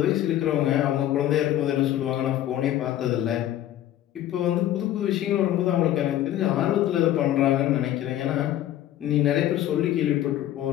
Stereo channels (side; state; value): right; quieter; 12.7 dB